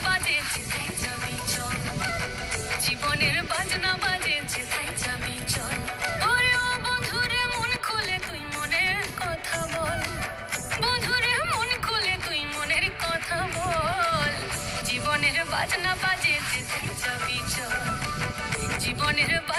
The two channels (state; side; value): identical; both; correlation 1.00